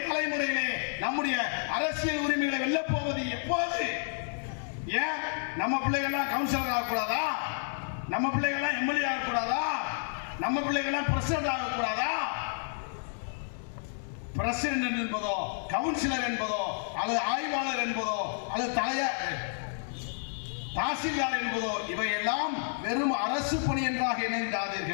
தலைமுறையிலே நம்முடைய அரசியல் உரிமைகளை வெல்ல போவது எப்போது? ஏன் நம்ம பிள்ளைகள்லாம் கவுன்சிலர் ஆகக்கூடாதா? நம்ம பிள்ளைகள்லாம் எம்எல்ஏ ஆகக்கூடாதா? நம்ம பிள்ளைகள்லாம் பிரசிடென்ட் ஆகக்கூடாதா? பிரசிடென்ட் என்பதோ கவுன்சிலர் என்பதோ அல்லது ஆய்வாளர் என்பதோ அல்லது தாசில்தார் என்பதோ இவையெல்லாம் வெறும் அரசு பணி என்றாக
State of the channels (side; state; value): right; silent; digital silence